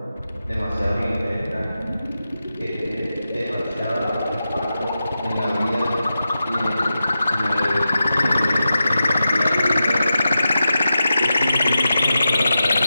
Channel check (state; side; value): inverted; both; correlation -0.90